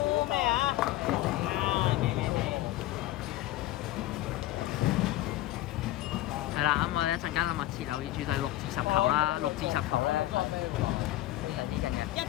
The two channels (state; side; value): quieter; right; 15.5 dB